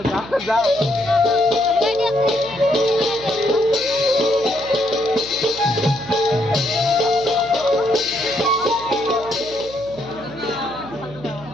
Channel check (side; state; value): right; noise; hum, 17 dB below the sound